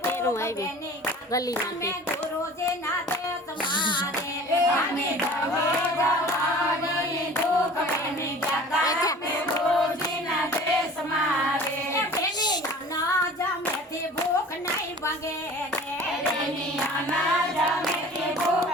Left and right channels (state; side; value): normal; both; correlation 0.43